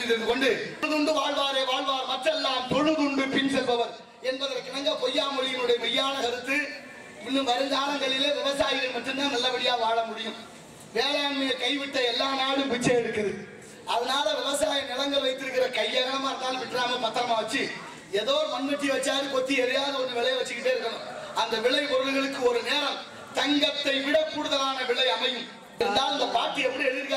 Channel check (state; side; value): identical; both; correlation 1.00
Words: தெரிவித்துக் கொண்டு தொழுதுண்டு வாழ்வாரே வாழ்வார் மற்றெல்லாம் தொழுதுண்டு பின் செல்பவர் என்பதற்கிணங்க பொய்யாமொழியினுடைய மெய்யான கருத்து. இன்னும் வருங்காலங்களிலே விவசாயிகள் மட்டும்தான் நல்லபடியா வாழ முடியும். வேளாண்மையை கைவிட்ட எல்லா நாடும் பிச்சை எடுக்குது. அதனால விவசாய நிலங்கள் வைத்திருக்கிற கையகமா இருந்தாலும் விட்டுறாம பத்திரமா வச்சு ஏதோ ஒரு மண்வெட்டி வச்சாரு கொத்தி எதையாவது ஒன்று விளைய வச்சுக்கிட்டே இருக்கணும். அந்த விளை பொருள்களுக்கு ஒரு நேரம் தங்கத்தை விட கூடுதலான விலை அமையும். இருந்தாலும் இந்த பாட்டி எப்படி